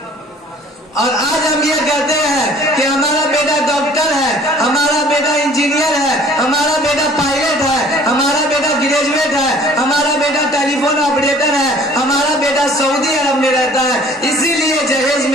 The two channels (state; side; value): normal; both; correlation 0.52